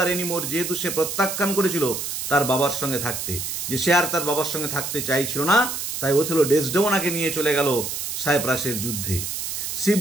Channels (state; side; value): noise; right; hiss, 4 dB below the sound